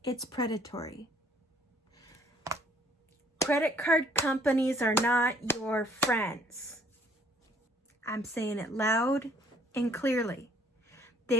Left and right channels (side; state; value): both; normal; correlation 0.61